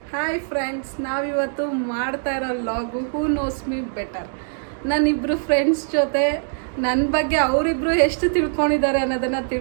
Hi friends, ನಾವಿವತ್ತು ಮಾಡ್ತಾ ಇರೋ ಲಾಗು ಹೂ ನೋಸ್ ಮೀ ಬೆಟರ್. ನಾನಿಬ್ಬರು ಫ್ರೆಂಡ್ಸ್ ಜೊತೆ ನನ್ನ ಬಗ್ಗೆ ಅವರಿಬ್ರು ಎಷ್ಟು ತಿಳ್ಕೊಂಡಿದ್ದಾರೆ ಅನ್ನೋದನ್ನು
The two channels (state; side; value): silent; left; digital silence